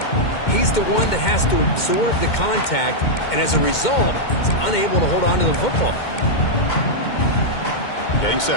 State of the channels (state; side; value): late; right; 2.1 ms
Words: he's the one that has to absorb the contact, and as a result, he's unable to hold on to the football. Getting